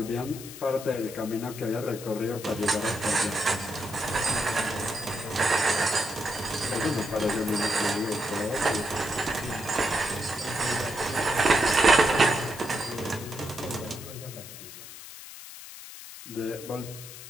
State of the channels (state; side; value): noise; left; hiss, 13 dB below the sound